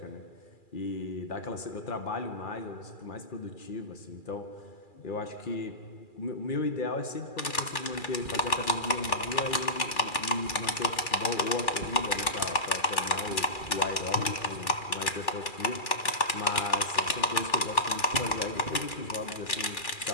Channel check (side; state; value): right; late; 2.4 ms